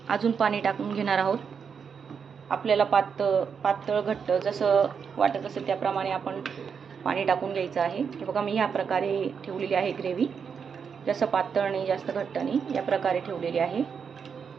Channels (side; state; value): left; quieter; 6.5 dB